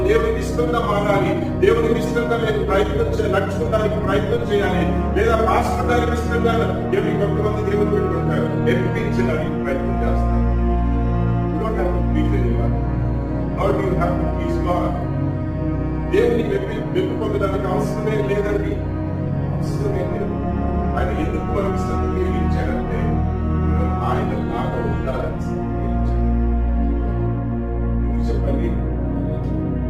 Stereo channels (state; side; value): identical; both; correlation 1.00